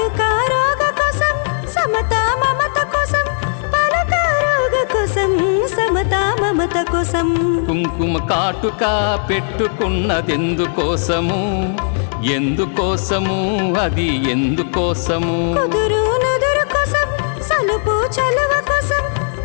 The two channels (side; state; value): right; silent; digital silence